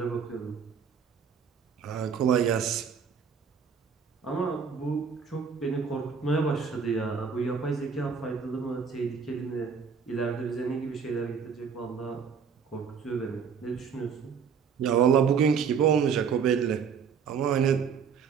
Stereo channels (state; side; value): quieter; left; 6.5 dB